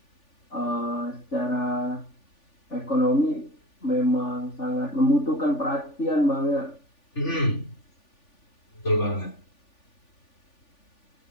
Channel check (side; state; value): right; late; 3.4 ms